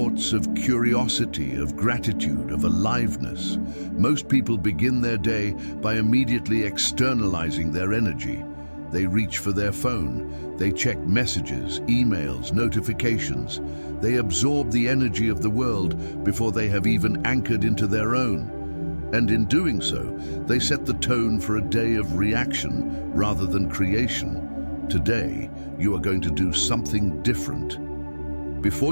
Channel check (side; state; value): both; inverted; correlation -1.00